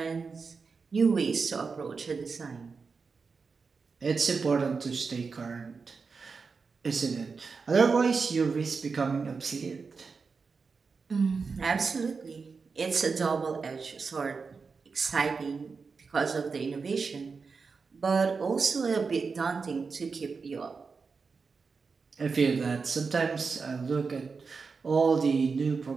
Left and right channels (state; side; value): quieter; left; 4.9 dB